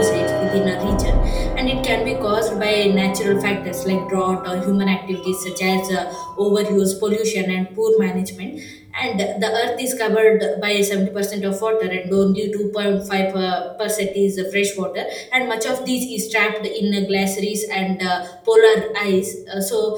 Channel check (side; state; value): both; identical; correlation 1.00